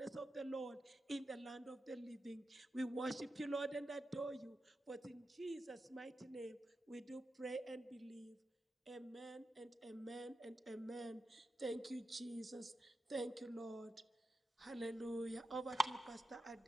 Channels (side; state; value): both; normal; correlation 0.90